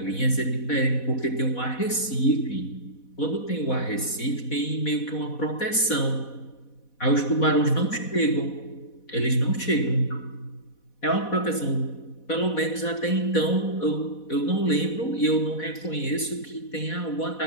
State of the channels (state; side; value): late; right; 4.1 ms